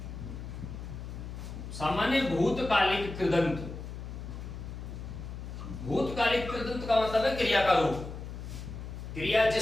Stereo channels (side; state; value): left; noise; hum, 9 dB below the sound